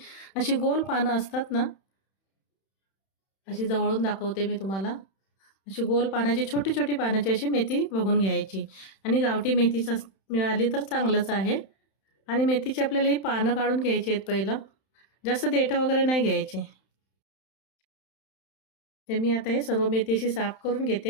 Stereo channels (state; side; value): late; right; 31 ms